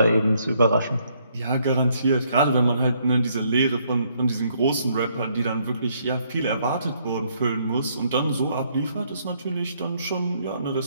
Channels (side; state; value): both; inverted; correlation -0.70